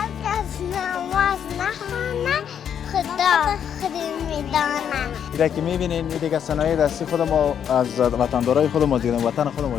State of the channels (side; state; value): right; quieter; 8.5 dB